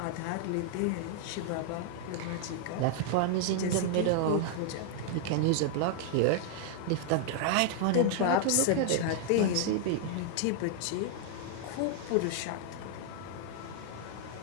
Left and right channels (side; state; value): both; different; correlation 0.00